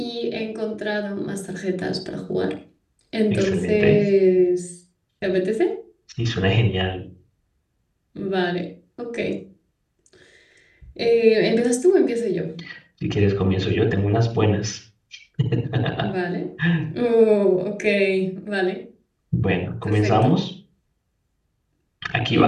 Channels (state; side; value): identical; both; correlation 1.00